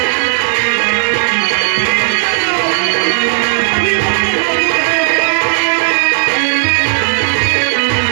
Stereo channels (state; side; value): silent; left; digital silence